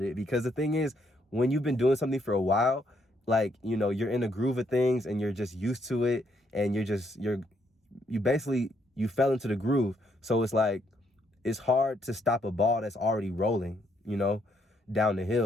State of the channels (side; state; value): both; normal; correlation 0.73